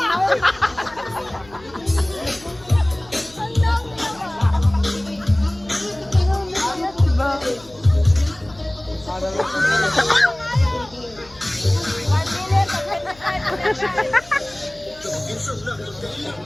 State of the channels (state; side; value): noise; left; hum, 23 dB below the sound